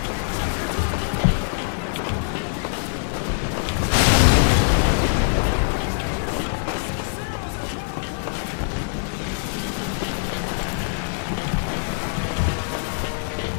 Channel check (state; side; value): silent; right; digital silence